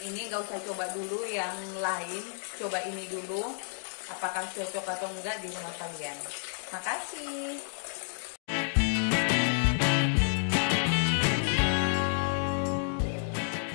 ini, nggak usah coba dulu yang lain. Coba ini dulu, apakah cocok atau enggak di rumah kalian. Makasih.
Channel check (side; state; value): right; silent; digital silence